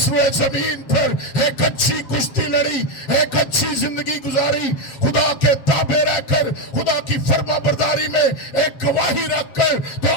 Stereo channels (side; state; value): right; late; 7.4 ms